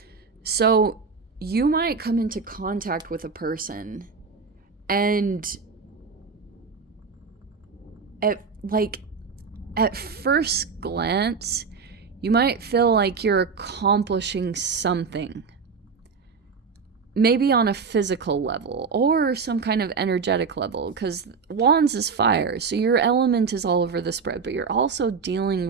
So you might come into contact with a person, and at first glance, you might feel like you're accomplishing something. Maybe on a physical level or some kind of energetic level, because Wands is fire, so your element is all over the spread, but you're also dealing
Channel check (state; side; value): quieter; left; 5.3 dB